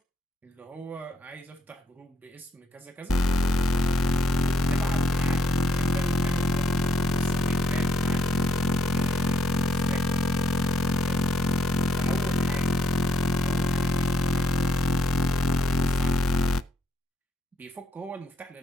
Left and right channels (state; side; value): normal; both; correlation 0.71